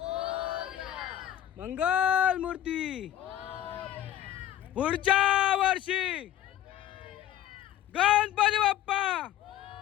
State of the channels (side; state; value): right; quieter; 12.2 dB